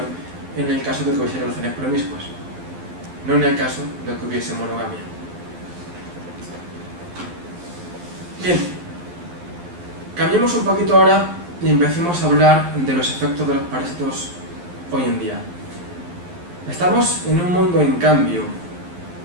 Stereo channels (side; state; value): left; late; 11 ms